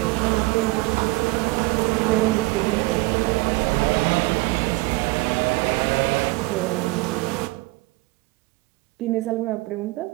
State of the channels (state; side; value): quieter; left; 22.3 dB